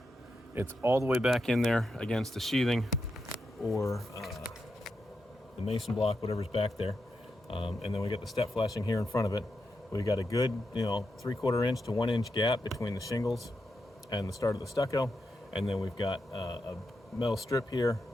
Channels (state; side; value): normal; both; correlation 0.86